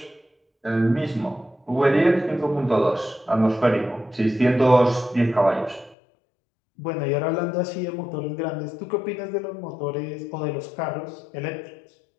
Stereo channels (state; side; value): drops out; right; at 6.0 s